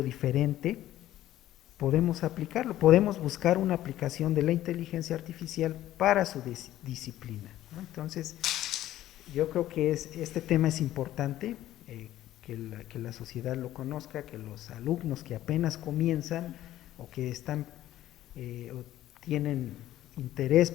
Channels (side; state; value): right; quieter; 13.7 dB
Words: diferente, podemos aplicarlo, podemos buscar una aplicación de la inteligencia artificial para su disciplina, ¿no? Entonces, yo creo que este tema es importante, que la sociedad lo conozca, que los alumnos que apenas comienzan o que están o tienen interés